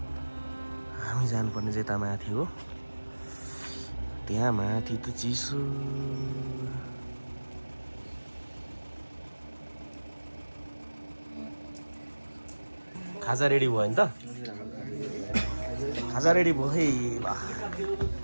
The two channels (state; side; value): inverted; both; correlation -1.00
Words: हामी जानुपर्ने चाहिँ यता माथि हो त्यहाँ माथि त चिसो खाजा रेडी भयो नि त खाजा रेडी भयो है